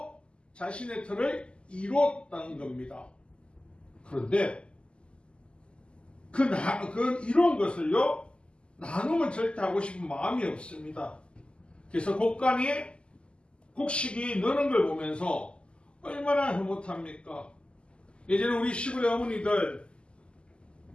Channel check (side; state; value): right; late; 0.052 ms